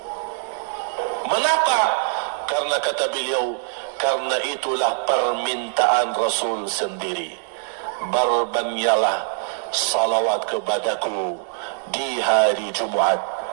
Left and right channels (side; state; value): left; silent; digital silence